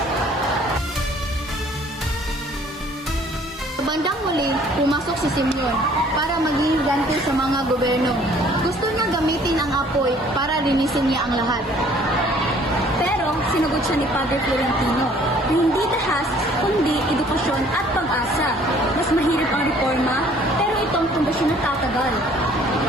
Sa bandang huli, pumasok si Simeon para maging ganti sa mga gobyerno. Gusto niya gamitin ang apoy para linisin niya ang lahat. Pero sinagot siya ni Padre Florentino, hindi dahas, kundi edukasyon at pag-asa. Mas mahirap ang reforma, pero itong pundasyon na tatagal.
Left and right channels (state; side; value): normal; both; correlation 0.57